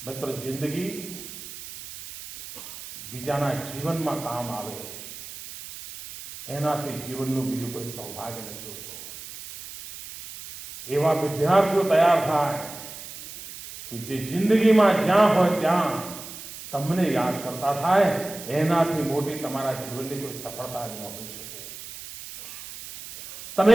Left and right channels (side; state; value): right; noise; hiss, 13 dB below the sound